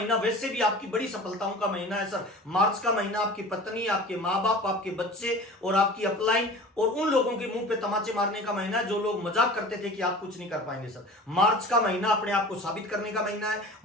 वैसे भी आपकी बड़ी सफलताओं का महीना है सर। मार्च का महीना आपकी पत्नी, आपके माँ बाप, आपके बच्चे और आपकी अपलाइन और उन लोगों के मुंह पे तमाचे मारने का महीना है जो लोग मजाक करते थे कि आप कुछ नहीं कर पाएंगे सर। मार्च का महीना अपने आप को साबित करने का महीना है।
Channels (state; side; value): normal; both; correlation 0.39